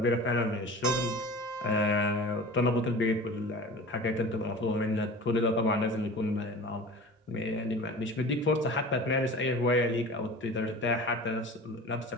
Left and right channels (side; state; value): both; normal; correlation 0.38